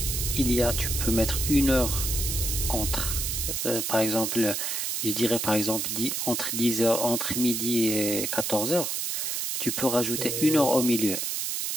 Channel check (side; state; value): right; noise; hiss, 1 dB below the sound